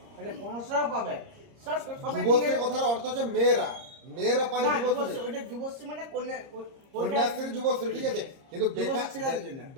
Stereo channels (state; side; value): late; left; 30 ms